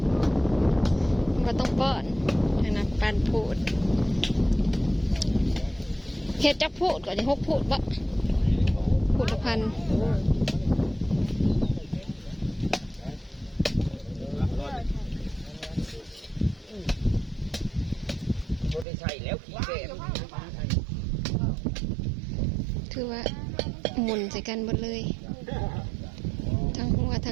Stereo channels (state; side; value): drops out; left; at 18.9 s